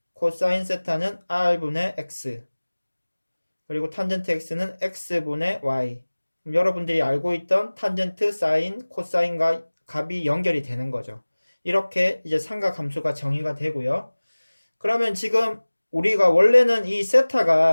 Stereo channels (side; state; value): both; inverted; correlation -1.00